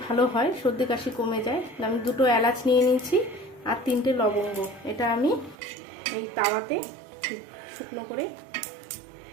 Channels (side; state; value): left; drops out; at 5.6 s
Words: ভালো হয়, সর্দি কাশি কমে যায়। আমি 2টো এলাচ নিয়ে নিয়েছি আর 3টে লবঙ্গ, এটা আমি এই তাওয়াতে শুকনো করে